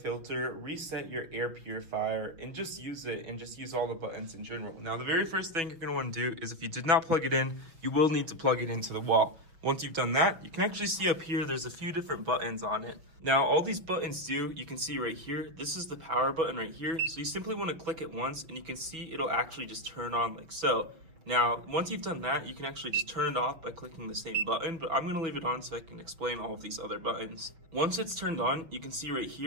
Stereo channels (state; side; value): late; left; 6.2 ms